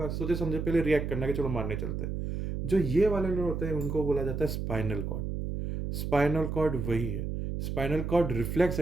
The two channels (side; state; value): right; noise; hum, 3 dB below the sound